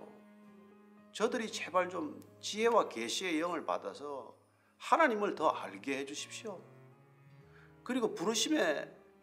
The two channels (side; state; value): both; identical; correlation 1.00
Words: 저들이 제발 좀 지혜와 계시의 영을 받아서 하나님을 더 알게 해주십시오. 그리고 부르심의